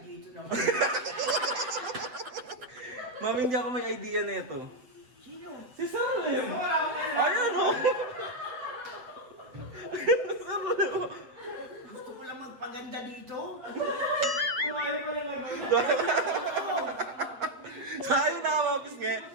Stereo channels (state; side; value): late; left; 7.9 ms